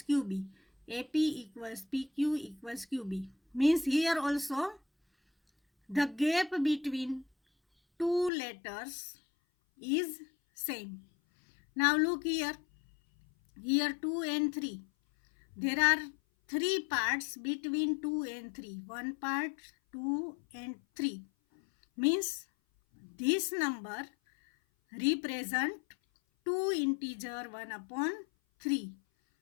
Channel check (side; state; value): right; drops out; at 8.3 s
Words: QB. AP equals PQ equals QB means here also the gap between two letters is same. Now look here 2 and 3. There are 3 parts between 2 and 3. One part, 2 and 3 means this number represent 2 integer 1 upon 3.